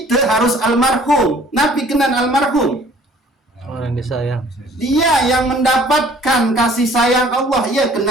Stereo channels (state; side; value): normal; both; correlation 0.54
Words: harus almarhum nabi kenan almarhum orang disayang dia yang mendapatkan kasih sayang Allah ya